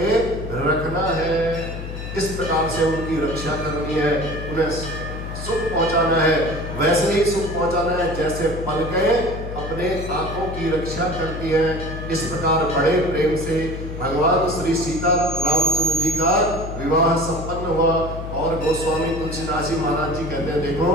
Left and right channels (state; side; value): noise; left; hum, 8 dB below the sound